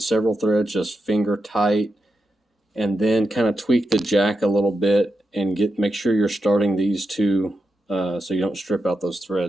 several threads just finger tight, and then kind of tweak the jack a little bit and make sure you're starting these two so you don't strip out those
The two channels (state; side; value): normal; both; correlation 0.87